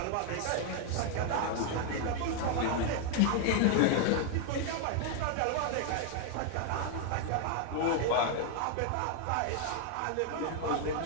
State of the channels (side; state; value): both; different; correlation 0.00